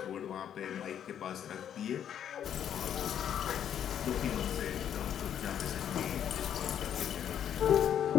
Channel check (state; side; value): quieter; right; 9.5 dB